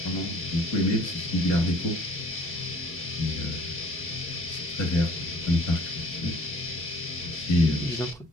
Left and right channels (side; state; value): both; normal; correlation 0.54